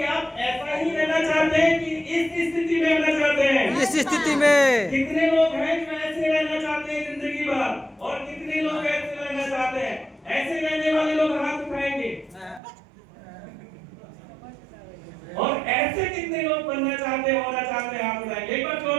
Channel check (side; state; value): left; drops out; at 12.6 s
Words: आप ऐसा ही रहना चाहते हैं कि इस स्थिति में रहना चाहते हैं? इस स्थिति में कितने लोग हैं जो ऐसे रहना चाहते हैं जिंदगी भर, और कितने लोग ऐसे रहना चाहते हैं? ऐसे रहने वाले लोग हाथ उठाएंगे। और ऐसे कितने लोग बनना चाहते हैं, होना चाहते हैं, हाथ उठाएंगे। एक बार